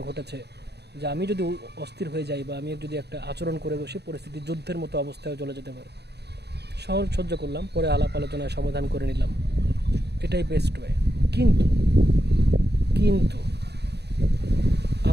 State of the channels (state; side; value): late; left; 0.48 ms